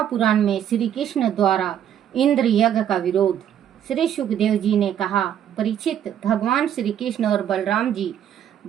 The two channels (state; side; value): quieter; left; 9.9 dB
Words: में श्री कृष्ण द्वारा इंद्र यज्ञ का विरोध। श्री सुखदेव जी ने कहा, परीक्षित, भगवान श्री कृष्ण और बलराम जी